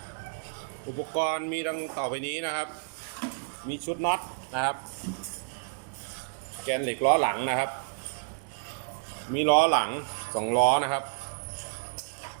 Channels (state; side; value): silent; left; digital silence